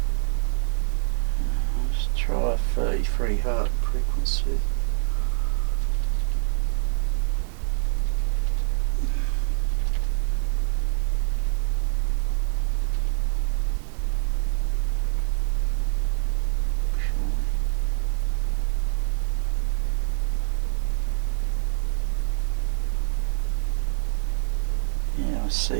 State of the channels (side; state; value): left; silent; digital silence